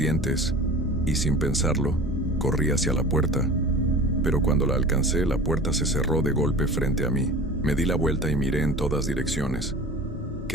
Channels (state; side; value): normal; both; correlation 0.39